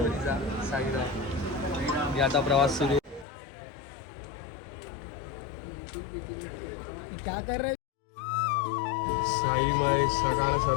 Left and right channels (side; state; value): right; drops out; at 3.2 s